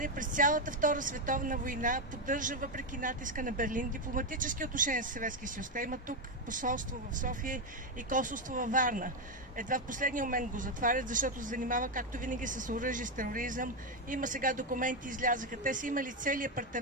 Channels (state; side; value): normal; both; correlation 0.06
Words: през цялата Втора световна война поддържа, въпреки натиска на Берлин, дипломатически отношения с Съветския съюз. Те имат тук посолство в София и консулство във Варна. Едва в последния момент го затварят, защото се занимава, както винаги, с оръжие, с тероризъм. Има сега документи, излязаха. Те са имали цели